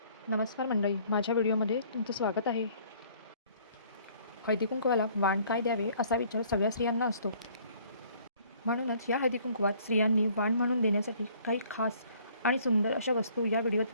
नमस्कार मंडळी, माझ्या व्हिडिओमध्ये तुमचं स्वागत आहे. हळदीकुंकवाला वाण काय द्यावे असा विचार सगळ्या स्त्रियांना असतो. म्हणूनच या हळदीकुंकवात स्त्रियांनी वाण म्हणून देण्यासाठी काही खास आणि सुंदर अशा वस्तू या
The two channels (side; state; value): both; inverted; correlation -0.58